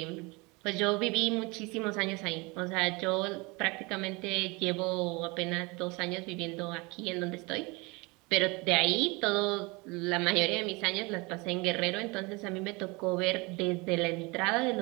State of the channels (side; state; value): left; quieter; 26.3 dB